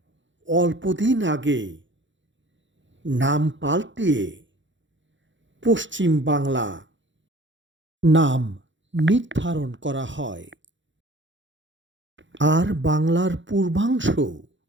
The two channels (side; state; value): left; late; 0.54 ms